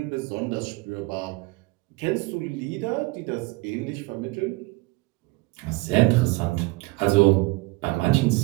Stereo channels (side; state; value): left; quieter; 23.3 dB